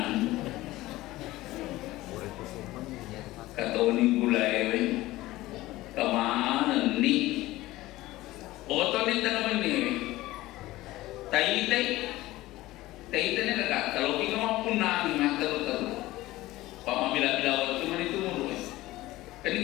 katoni gulai kemana ni oto ni tanam ni tai ni kakak kalau kita mau punah ni mater pamabila waktu mana itu mulu kan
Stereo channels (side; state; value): right; quieter; 17.6 dB